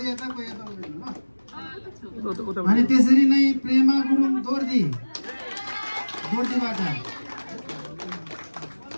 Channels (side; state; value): both; inverted; correlation -1.00